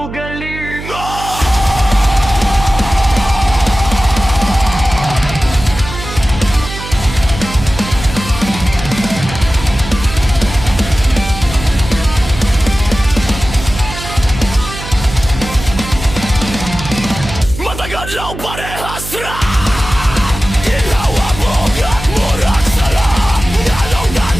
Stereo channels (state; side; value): noise; right; hum, 10 dB below the sound